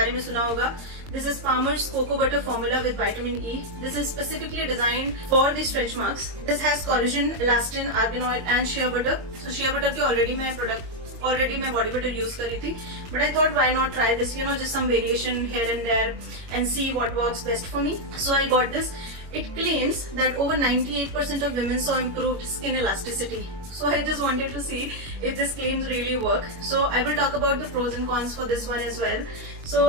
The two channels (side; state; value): left; late; 22 ms